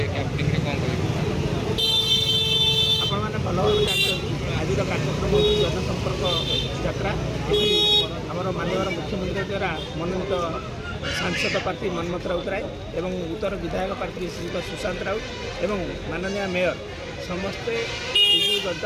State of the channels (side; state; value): both; identical; correlation 1.00